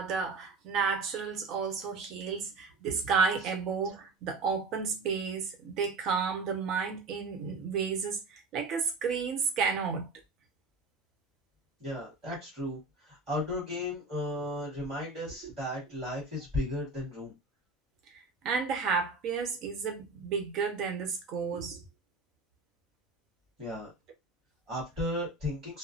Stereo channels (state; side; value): quieter; left; 3.7 dB